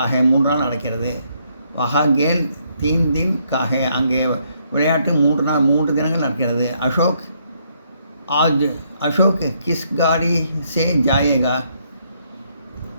है 3 நாள் நடக்கிறது. वहाँ गेल 3 दिन का है அங்கே விளையாட்டு 3 தினங்கள் நடக்கிறது. अशोक किस गाड़ी से जाएगा.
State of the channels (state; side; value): inverted; both; correlation -0.73